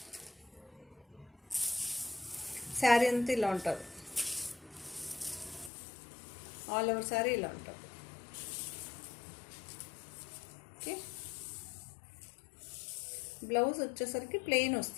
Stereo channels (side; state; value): right; drops out; at 5.7 s